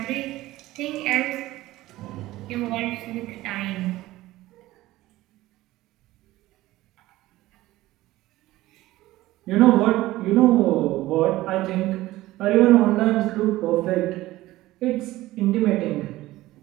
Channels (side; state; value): left; quieter; 17.0 dB